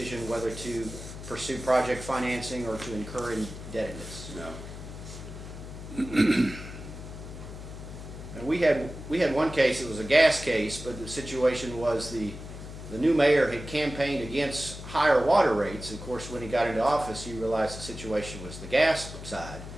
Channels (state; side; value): noise; left; hum, 11 dB below the sound